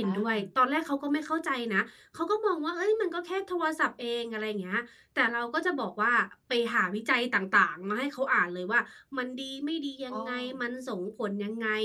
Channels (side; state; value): both; identical; correlation 1.00